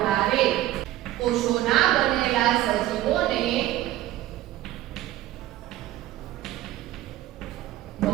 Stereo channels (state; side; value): quieter; left; 14.9 dB